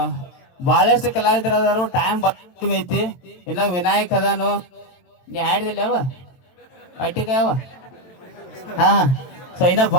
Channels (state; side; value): late; right; 22 ms